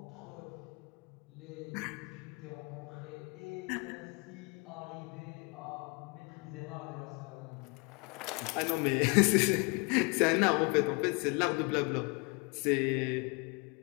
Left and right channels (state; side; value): quieter; right; 31.0 dB